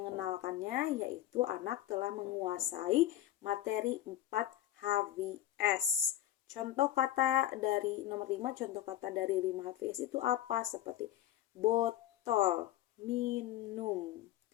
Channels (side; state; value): right; quieter; 13.1 dB